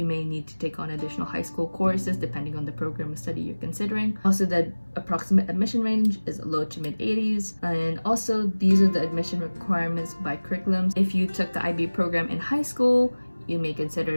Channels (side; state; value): both; inverted; correlation -1.00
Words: may need to take on additional high school courses depending on the program of study you're considering. Also, the approximate admission range is low to mid 80s. And also, these are the admission requirements by curriculums. If you took the IB program in high school, you may